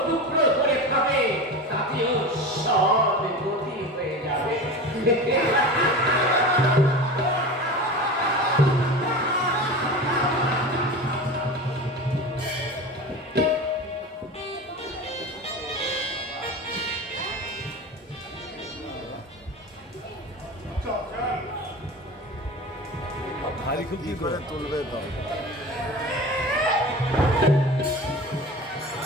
টুকরো করে খাবে, তাতেও সব গতি হয়ে যাবে। ভারী খুব কি করে তুলবে তো?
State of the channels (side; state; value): both; normal; correlation 0.31